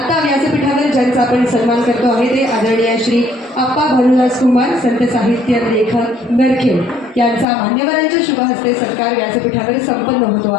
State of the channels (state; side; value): drops out; right; at 7.5 s